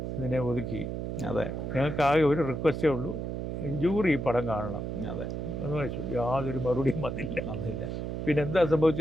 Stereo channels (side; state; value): right; noise; hum, 4 dB below the sound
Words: ഇതിനെ ഒതുക്കി. അതെ. ഞങ്ങൾക്ക് ആകെ ഒരു റിക്വസ്റ്റേ ഉള്ളൂ, ജൂറി ഈ പടം കാണണം. അതെ എന്ന് വെച്ചു. യാതൊരു മറുപടിയും വന്നില്ല. പിന്നെ എന്താ